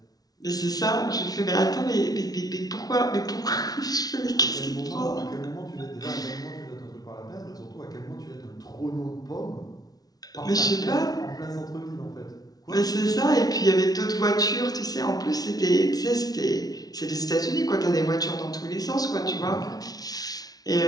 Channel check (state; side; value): late; right; 0.19 ms